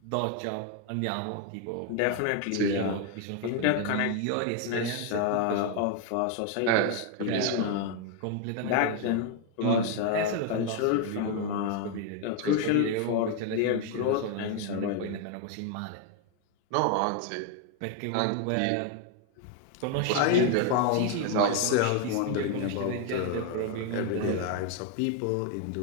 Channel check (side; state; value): both; different; correlation 0.01